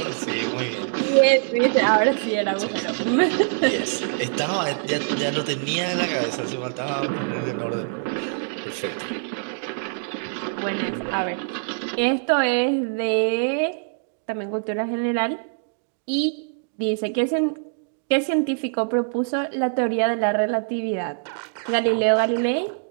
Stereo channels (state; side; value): silent; left; digital silence